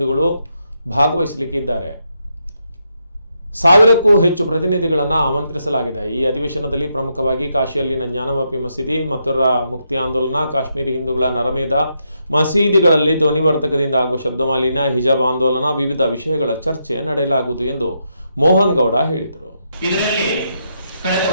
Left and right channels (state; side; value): inverted; both; correlation -0.80